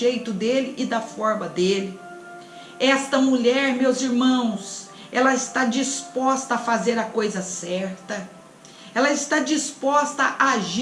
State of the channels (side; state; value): both; identical; correlation 1.00